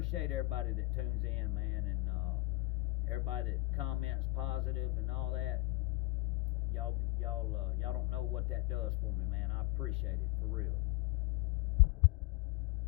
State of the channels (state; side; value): quieter; right; 20.8 dB